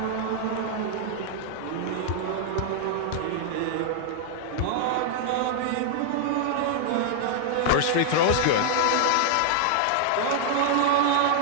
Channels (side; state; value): both; different; correlation -0.01